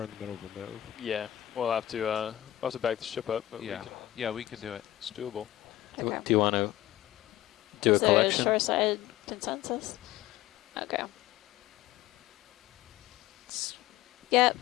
in the middle of a move. Yeah, we'll have to back the ship up. But Yeah, we could do it. It's doable. Okay. Do you want to do Is a there collection? a shoreside consensus? Okay. Yep,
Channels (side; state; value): right; quieter; 14.5 dB